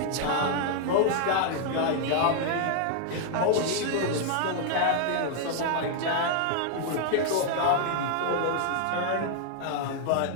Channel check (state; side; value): different; both; correlation 0.00